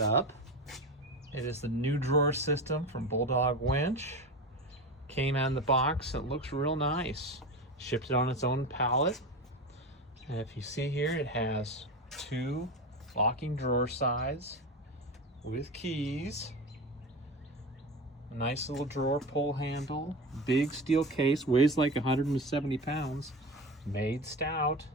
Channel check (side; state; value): both; normal; correlation 0.25